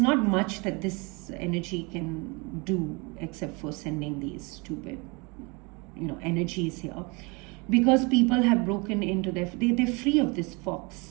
much that this energy can do except for sending these stupid, you know, energies here, because people have broken into they're free of this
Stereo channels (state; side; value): quieter; left; 28.8 dB